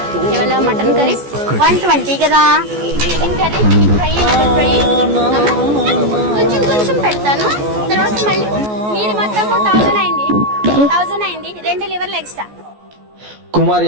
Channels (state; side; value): late; left; 14 ms